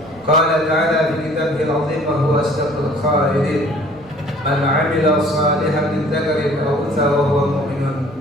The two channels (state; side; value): noise; right; rumble, 25 dB below the sound